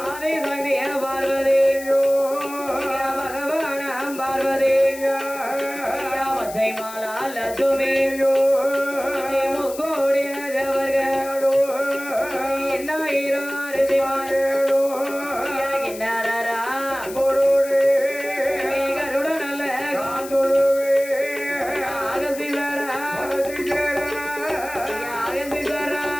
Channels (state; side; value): noise; left; hiss, 14 dB below the sound